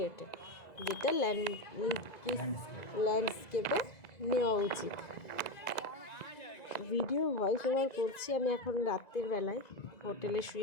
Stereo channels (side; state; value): right; late; 1.9 ms